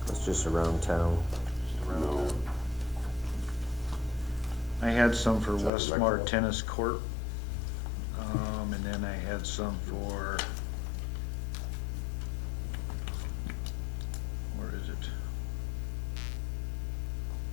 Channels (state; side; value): drops out; right; at 5.7 s